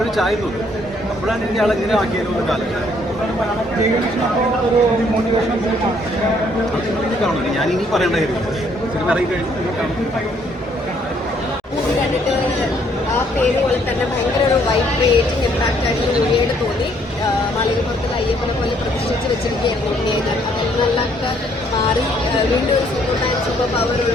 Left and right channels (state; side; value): normal; both; correlation 0.66